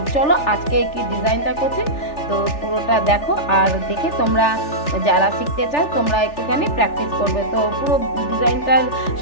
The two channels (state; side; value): late; right; 3.4 ms